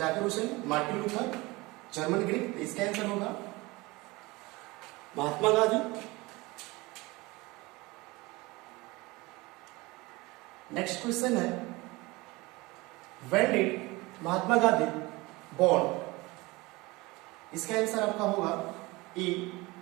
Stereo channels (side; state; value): left; quieter; 22.8 dB